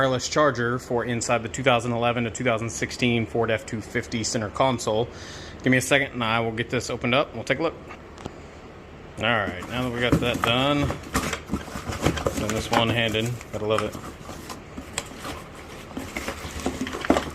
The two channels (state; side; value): identical; both; correlation 1.00